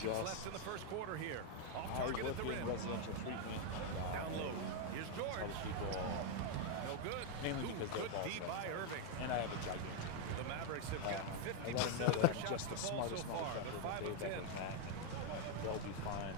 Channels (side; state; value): both; different; correlation 0.01